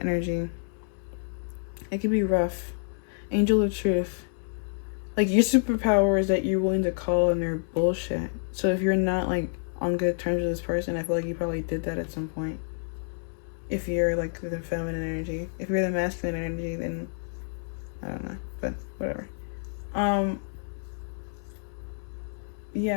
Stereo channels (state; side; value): silent; right; 59 dB below the other